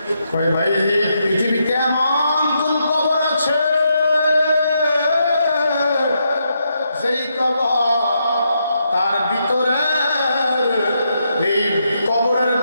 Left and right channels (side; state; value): both; inverted; correlation -0.80